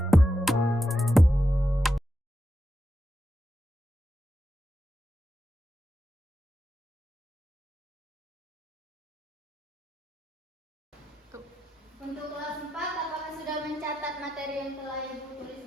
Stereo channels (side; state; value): both; normal; correlation 0.87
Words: Untuk kelas 4, apakah sudah mencatat materi yang telah Ibu